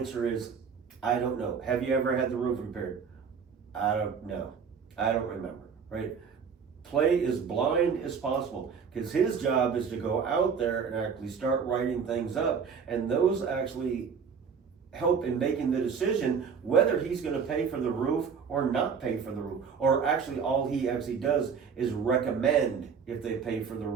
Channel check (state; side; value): quieter; left; 6.3 dB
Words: is, I don't know. Have you ever had the roof repaired? I don't know. I don't remember, right? Play as blind as possible, because his job is to go out there and actually start writing things up, and those actually help in making the decision whether he's going to pay for the roof or not pay for the roof, or actually all he actually does is recommend if they pay for the